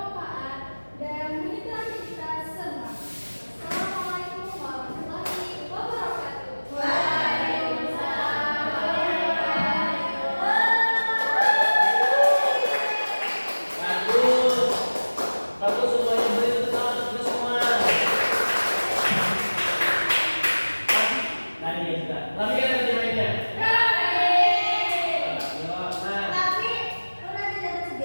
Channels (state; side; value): inverted; both; correlation -1.00